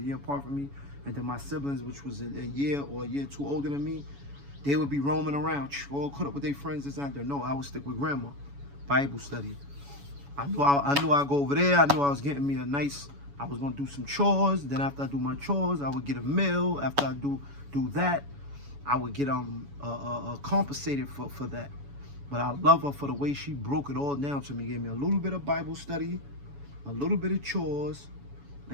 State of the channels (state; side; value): late; left; 7.1 ms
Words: year apart from me, and then my siblings, which was a year or a year too older than me, they would be roaming around, all caught up with their friends this and that. No, I would stick with grandma. Bible study. I knew I'd go over there. I knew I was getting me a nice, I was gonna do some chores. Then after I do my chores, I would get a meal. After I do that, I would get compensated for that. But I love her for the way she broke it all down to me. Gave me a little bit of Bible study, a little bit of chores,